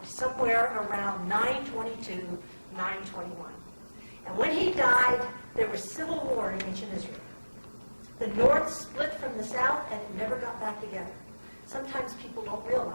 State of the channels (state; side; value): inverted; both; correlation -1.00